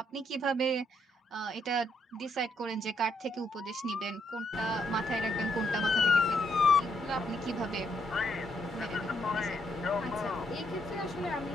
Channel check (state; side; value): normal; both; correlation 0.75